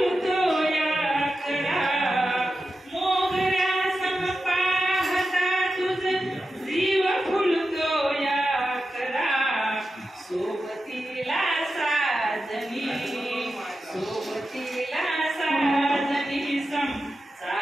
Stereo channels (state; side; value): normal; both; correlation 0.91